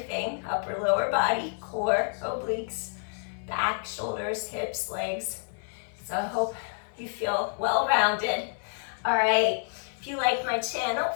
upper, lower body, core, obliques, back, shoulders, hips, legs. So I hope you feel well-rounded. All right, if you like my channel,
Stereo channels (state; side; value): silent; right; 58 dB below the other